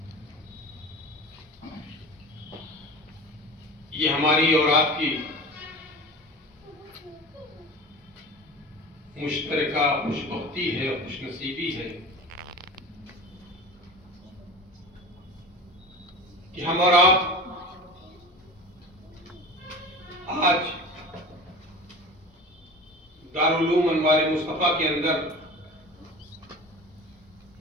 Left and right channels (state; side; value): normal; both; correlation 0.35